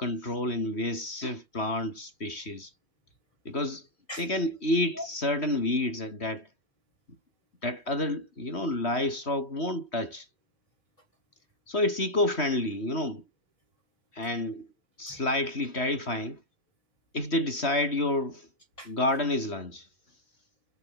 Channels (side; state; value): right; late; 3.2 ms